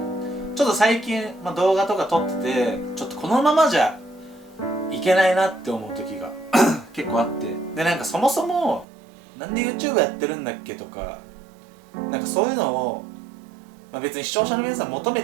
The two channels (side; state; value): left; drops out; at 8.8 s